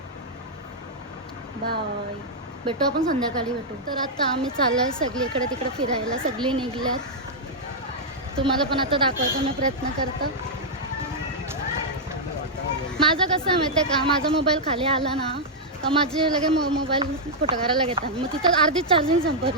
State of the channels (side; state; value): both; normal; correlation -0.05